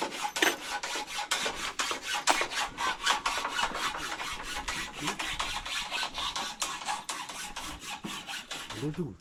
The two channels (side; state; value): both; identical; correlation 1.00